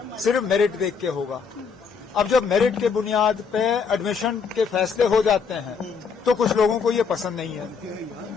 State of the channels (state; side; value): quieter; right; 5.7 dB